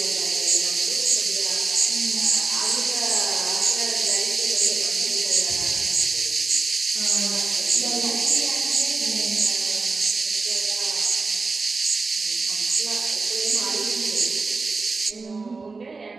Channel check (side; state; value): left; quieter; 4.1 dB